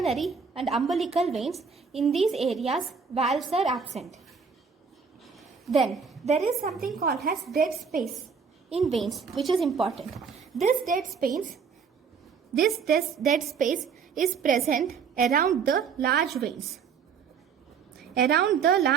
and umbilical veins. In these areas, valves are absent. Then there is something called as dead space in veins, which is important. This dead space is present around the large veins. Around the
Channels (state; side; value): quieter; left; 6.0 dB